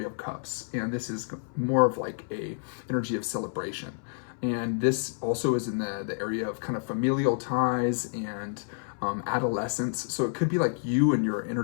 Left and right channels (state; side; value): silent; right; 59 dB below the other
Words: of Cups. And this is more of like a energy of celebration. And this also is in the area of kind of familial ties and adolescence. So it could be like you and your inner